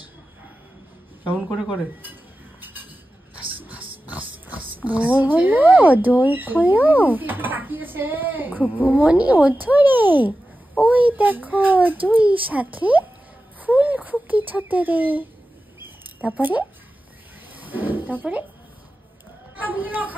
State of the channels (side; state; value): both; normal; correlation 0.93